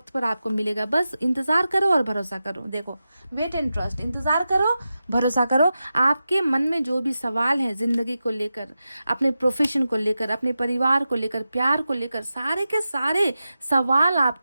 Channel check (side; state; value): both; inverted; correlation -0.92